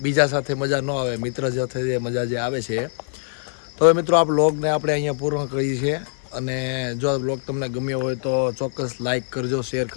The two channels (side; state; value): right; silent; 56 dB below the other